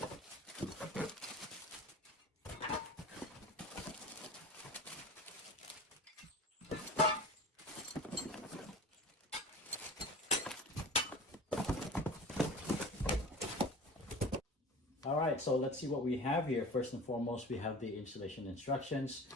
All right, so let's see what we have here. First and foremost, we have the installation instructions.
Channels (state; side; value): normal; both; correlation 0.37